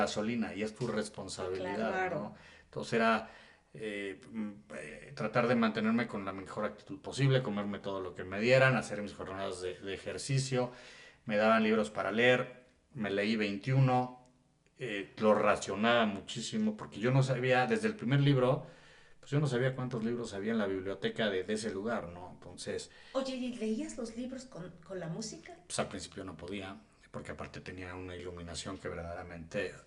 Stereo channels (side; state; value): both; identical; correlation 1.00